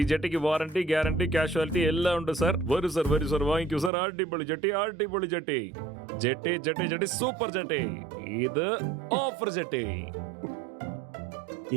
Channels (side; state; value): left; drops out; at 3.9 s